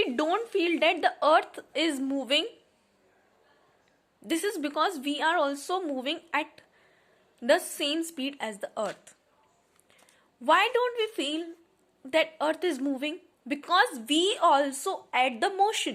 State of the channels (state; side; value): identical; both; correlation 1.00